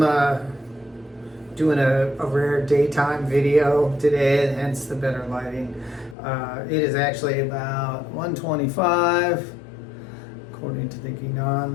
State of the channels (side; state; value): right; drops out; at 6.2 s